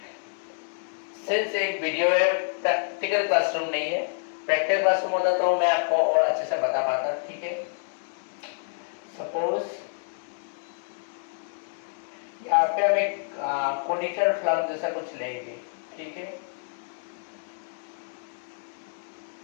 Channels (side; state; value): right; silent; digital silence